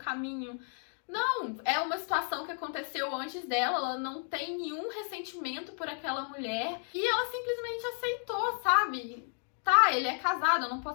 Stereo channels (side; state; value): right; silent; 56 dB below the other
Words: Não, é uma situação que aconteceu antes dela, ela não tem nenhum ressentimento por aquela mulher e ela simplesmente aceitou, sabe? tá, ele é casado, eu não